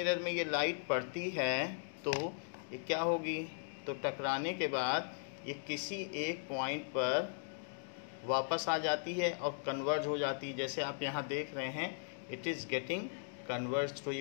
में ये लाइट पड़ती है तो ये क्या होगी, तो टकराने के बाद ये किसी एक पॉइंट पर वापस आ जाती है और कन्वर्ज हो जाती है, जैसे आप यहाँ देख रहे हैं इट इज़ गेटिंग कन्वर्ज, तो ये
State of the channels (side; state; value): right; silent; digital silence